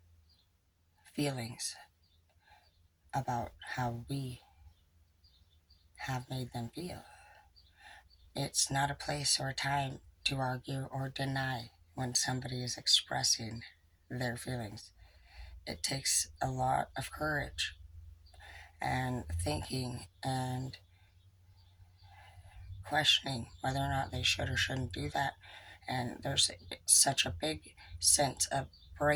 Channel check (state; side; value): identical; both; correlation 1.00